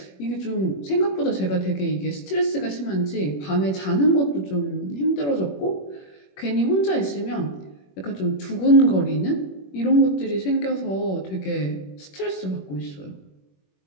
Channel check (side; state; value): right; late; 21 ms